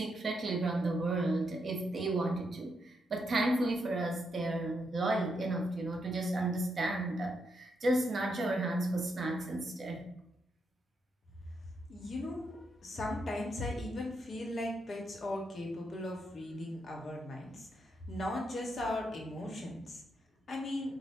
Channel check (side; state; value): both; normal; correlation 0.81